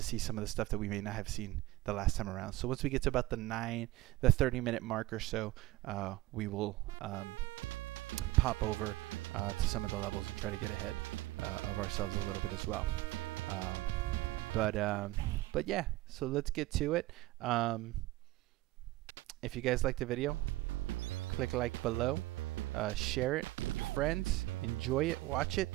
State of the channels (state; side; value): quieter; left; 18.3 dB